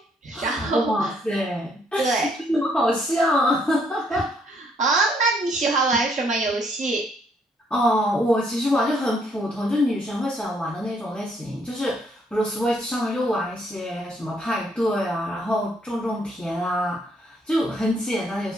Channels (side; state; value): both; normal; correlation 0.69